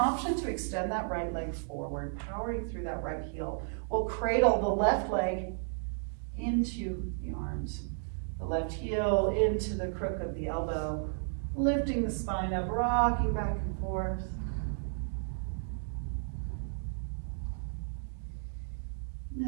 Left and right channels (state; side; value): silent; left; digital silence